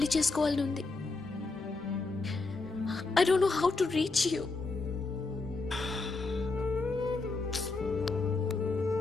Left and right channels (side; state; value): right; quieter; 3.7 dB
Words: చేసుకోవాలని ఉంది. I don't know how to reach you.